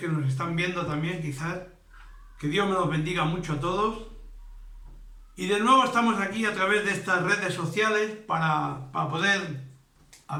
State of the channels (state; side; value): identical; both; correlation 1.00